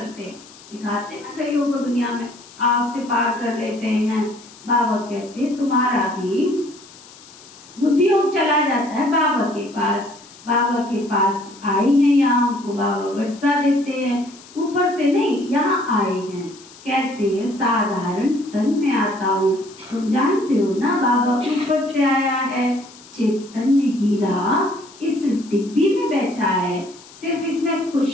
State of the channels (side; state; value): left; noise; hiss, 22 dB below the sound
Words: दिखाते ना कईयों को दुनिया में आग से पार कर लेते हैं। बाबा कहते तुम्हारा भी बुद्धि योग चला जाता है बाबा के पास। बाबा के पास आई हैं, यहाँ हमको बाबा वर्षा देते हैं, ऊपर से नहीं, यहाँ आए हैं। कहते हैं साधारण तन में आता हूँ। तुम जानते हो ना बाबा ऊपर से आया है। चैतन्य हीरा इस डिब्बी में बैठा है। सिर्फ इसमें